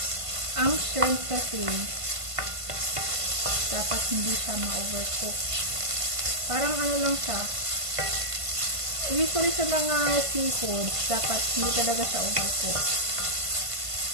Ang shrimp kasi dapat hindi siya ma-overcook. Parang lang siya. Usually sa mga seafood, dapat hindi talaga siya overcook.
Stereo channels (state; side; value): late; left; 1.5 ms